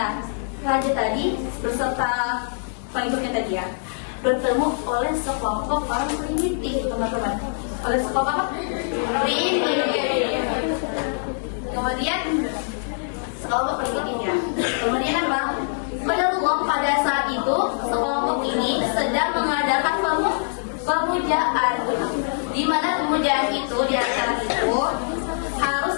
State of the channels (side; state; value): right; silent; digital silence